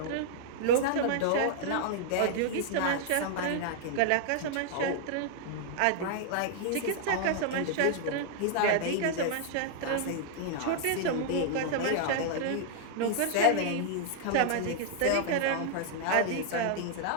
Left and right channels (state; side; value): different; both; correlation 0.00